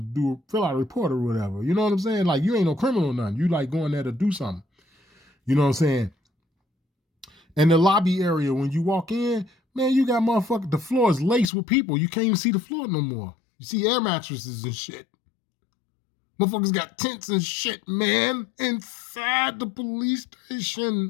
to fill out a report or whatever. You know what I'm saying? Like, you ain't no criminal or nothing. You like going there to do something. You know what I'm saying? And the lobby area, when you walk in, man, you got motherfucker, the floor is laced with people. You can't even see the floor no more. You see air mattresses and shit. Motherfuckers got tents and shit, man, inside the police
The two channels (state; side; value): drops out; right; at 11.5 s